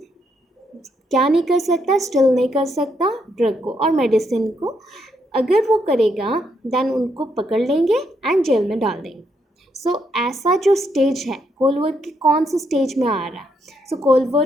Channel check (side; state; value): both; normal; correlation 0.76